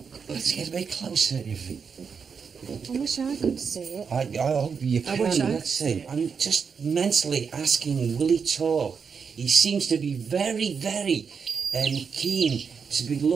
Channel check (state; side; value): quieter; left; 6.1 dB